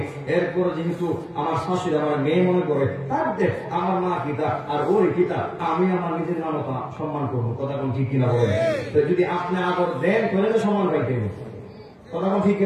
এরপরে যেহেতু আমার শাশুড়ি আমার মেয়ে মনে করে, তার দেখ আমার মা কিতা আর ওর কিতা, আমি আমার নিজের মানবতা সম্মান করবো। কথা কোন ঠিক কিনা বলেন? তো যদি আপনি আদর দেন তাহলে তো সম্মান পাইতেন। কথা কোন ঠিক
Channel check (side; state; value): both; identical; correlation 1.00